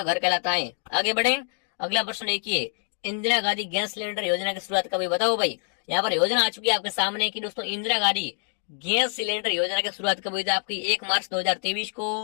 घर कहलाता है। आगे बढ़े, अगला प्रश्न देखिए, इंदिरा गांधी गैस सिलेंडर योजना की शुरुआत कब हुई, बताओ भाई। यहाँ पर योजना आ चुकी है आपके सामने कि दोस्तों इंदिरा गांधी गैस सिलेंडर योजना की शुरुआत कब हुई थी आपकी, 1 मार्च 2023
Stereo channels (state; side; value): silent; right; 61 dB below the other